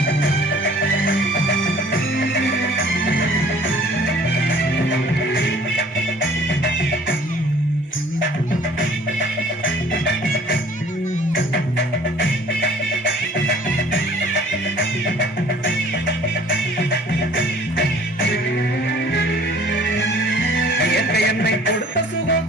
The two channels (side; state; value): both; normal; correlation 0.52